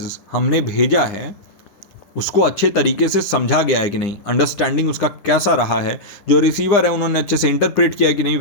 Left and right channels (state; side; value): late; right; 9.9 ms